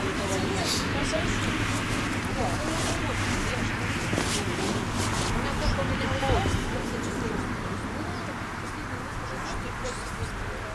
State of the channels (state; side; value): identical; both; correlation 1.00